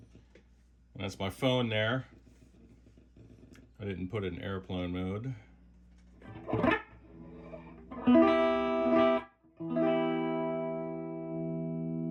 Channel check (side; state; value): both; identical; correlation 1.00